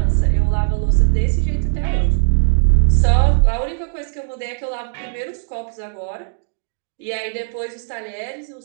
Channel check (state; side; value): silent; left; digital silence